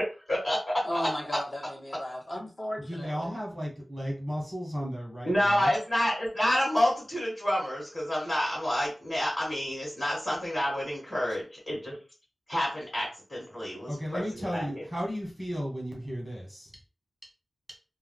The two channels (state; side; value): normal; both; correlation 0.97